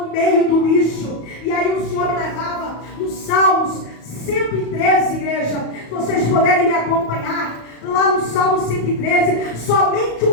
meio do lixo. E aí o Senhor me levava nos Salmos 113, igreja. Se vocês puderem me acompanhar lá no Salmo 113, somente um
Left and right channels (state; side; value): late; right; 34 ms